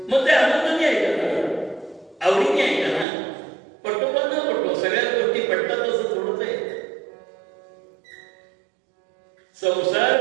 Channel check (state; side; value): drops out; left; at 3.1 s